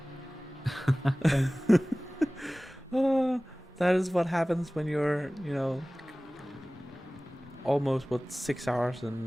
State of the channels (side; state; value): both; normal; correlation 0.98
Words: That is what happens when you're, almost 6 hours